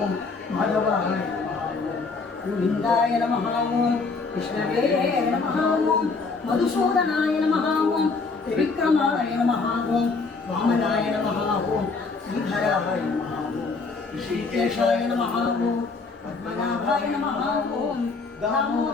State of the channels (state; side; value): quieter; right; 4.2 dB